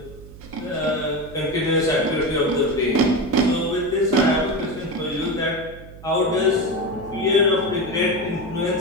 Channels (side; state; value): right; noise; hum, 17 dB below the sound